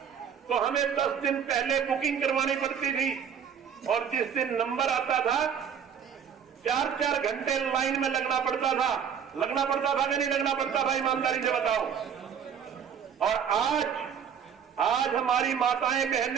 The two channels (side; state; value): left; quieter; 7.8 dB